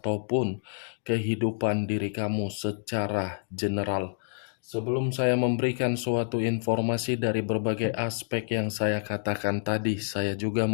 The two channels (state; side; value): silent; right; digital silence